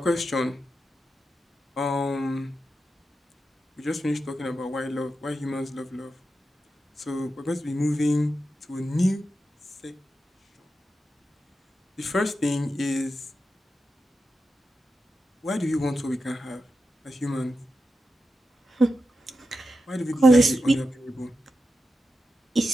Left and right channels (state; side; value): normal; both; correlation 0.89